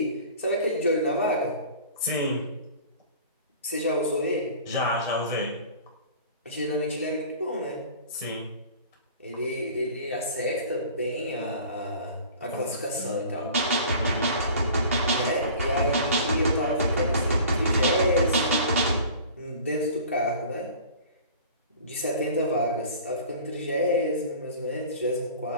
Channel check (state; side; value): inverted; both; correlation -0.43